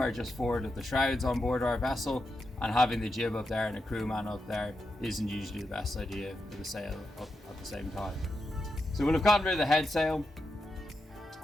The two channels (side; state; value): both; normal; correlation 0.86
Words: just forward of the shrouds on board our vessel, and having the jib up there and a crewman up there isn't usually the best idea for the sail up at the same time. So we'll have gotten rid of the head sail,